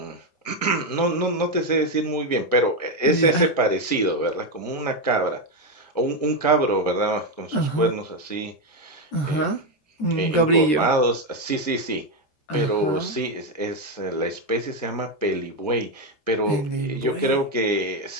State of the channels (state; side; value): late; right; 13 ms